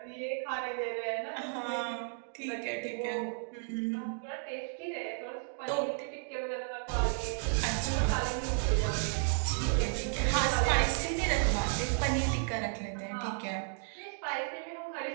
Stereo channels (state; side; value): silent; left; 56 dB below the other